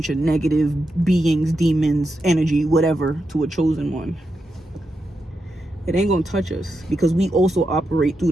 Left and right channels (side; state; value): both; normal; correlation 0.86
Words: of negative beings, demons, energy, whatever, to a chosen one. It ain't gonna touch us, because we also operate through